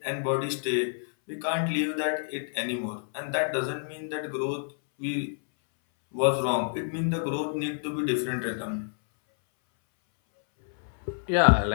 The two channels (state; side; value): silent; right; 59 dB below the other